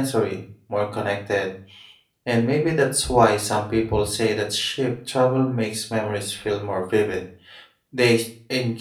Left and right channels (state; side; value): identical; both; correlation 1.00